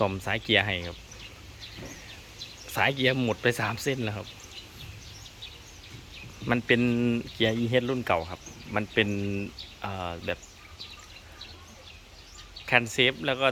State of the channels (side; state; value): both; identical; correlation 1.00